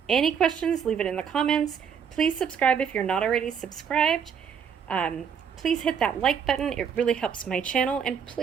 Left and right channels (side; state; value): left; quieter; 7.3 dB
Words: Any questions, leave it in the comments. Please subscribe if you're not already subscribed. Please hit that like button. It really helps my channel. And